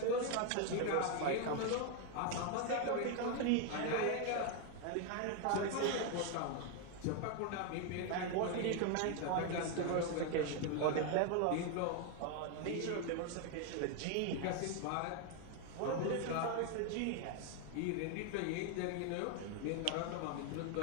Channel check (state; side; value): different; both; correlation 0.01